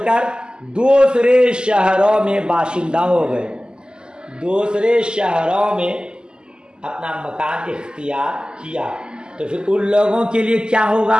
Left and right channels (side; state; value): left; late; 0.047 ms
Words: کر دوسرے شہروں میں باشندہ ہو گئے، دوسرے شہروں میں اپنا مکان اختیار کیا، تو پھر ان لوگوں کے لیے کیا